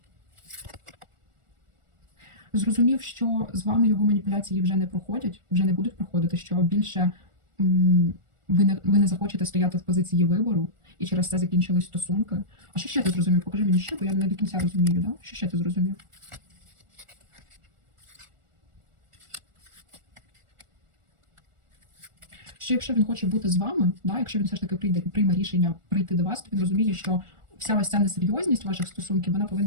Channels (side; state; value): left; late; 1.4 ms